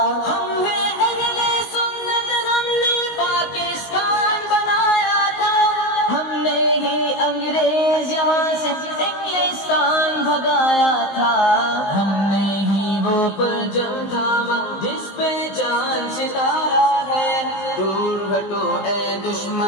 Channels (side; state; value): right; late; 19 ms